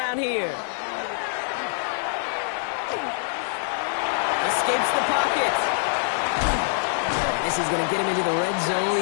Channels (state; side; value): silent; right; digital silence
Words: here. Escapes the pocket. This is going to get him into the red zone.